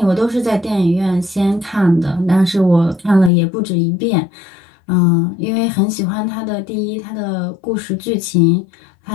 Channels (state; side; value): drops out; right; at 3.3 s